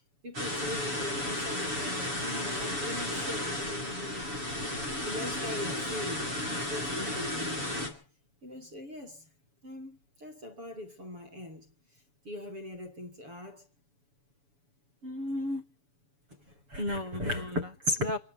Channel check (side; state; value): left; late; 7.1 ms